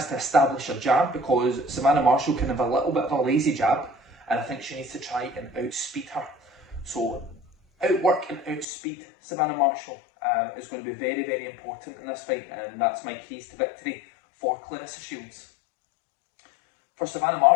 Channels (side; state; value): right; drops out; at 8.7 s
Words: to establish her jab because Savannah Marshall can have a little bit of a lazy jab, and I think she needs to try and outspeed her. So outwork and outspeed Savannah Marshall is going to be very, very important in this fight, and that's my keys to victory for Claressa Shields. For Savannah